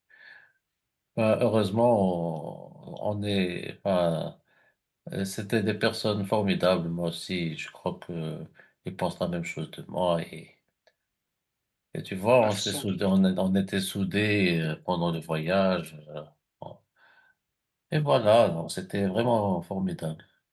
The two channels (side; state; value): both; identical; correlation 1.00